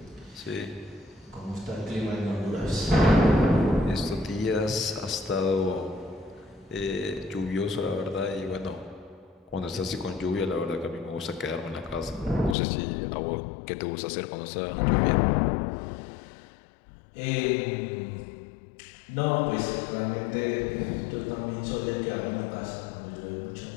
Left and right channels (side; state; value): right; drops out; at 12.6 s